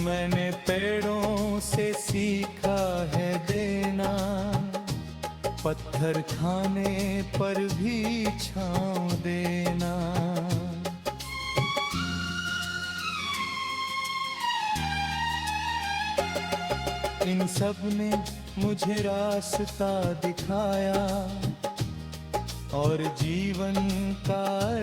मैंने पेड़ों से सीखा है देना, पत्थर खाने पर भी छांव देना। इन सब ने मुझे रास्ता दिखाया, और जीवन का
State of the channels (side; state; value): both; identical; correlation 1.00